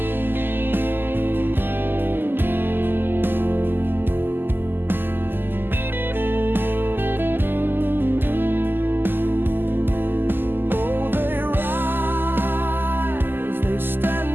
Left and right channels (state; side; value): late; left; 0.095 ms